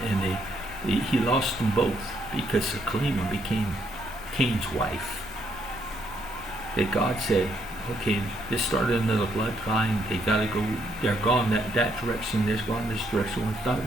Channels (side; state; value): both; normal; correlation 0.73